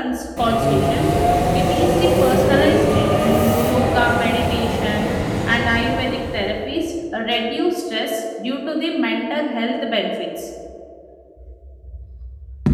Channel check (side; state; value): both; identical; correlation 1.00